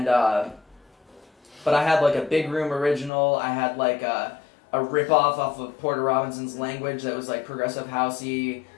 but I had like a Big Room original. I had like a rip-off of Porter Robinson's Language that was like progressive housey.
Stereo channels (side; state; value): right; drops out; at 3.1 s